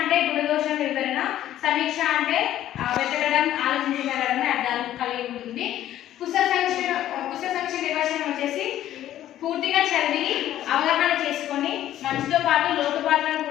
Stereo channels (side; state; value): right; quieter; 12.5 dB